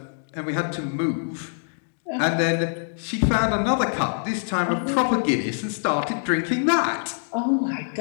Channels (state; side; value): silent; right; digital silence